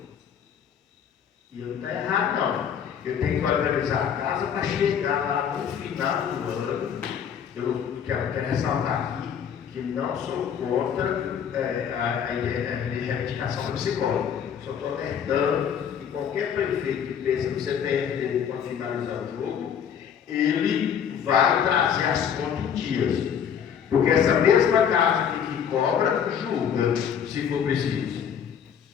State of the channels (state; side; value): quieter; right; 8.1 dB